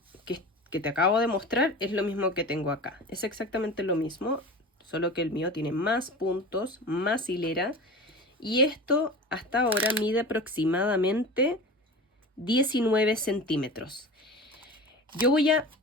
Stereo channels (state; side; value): normal; both; correlation 0.33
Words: te acabo de mostrar es lo mismo que tengo acá. Es exactamente lo mismo, solo que el mío tiene más puntos, más hilera. Y esto hasta ahora mide aproximadamente 19 centímetros. Yo voy a